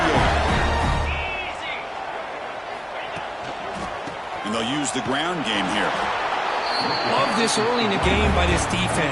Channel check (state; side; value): identical; both; correlation 1.00